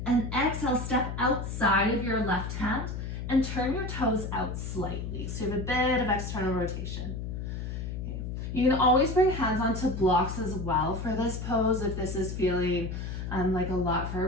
And exhale, step outside of your left hand and turn your toes out slightly. So you have a bit of external rotation. Okay. You can always bring hands onto blocks as well for this pose if this is feeling like a lot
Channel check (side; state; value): left; noise; hum, 5 dB below the sound